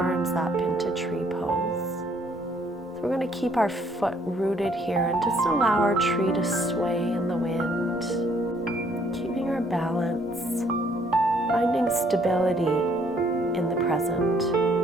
up into tree pose. So we're going to keep our foot rooted here and just allow our tree to sway in the wind. Keeping our balance, finding stability in the present.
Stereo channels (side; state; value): both; normal; correlation 0.64